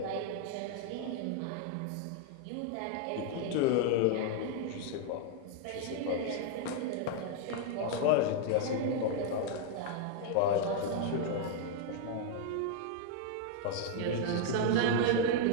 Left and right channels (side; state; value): both; different; correlation 0.00